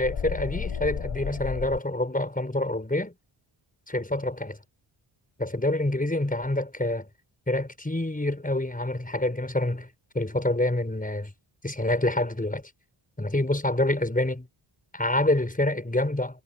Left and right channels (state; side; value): normal; both; correlation 0.50